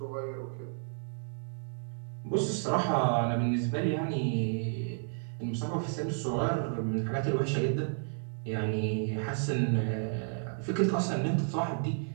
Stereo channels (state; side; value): silent; left; digital silence